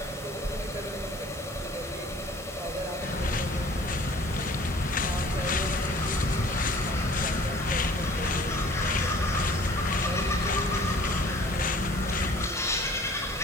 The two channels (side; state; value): both; normal; correlation 0.51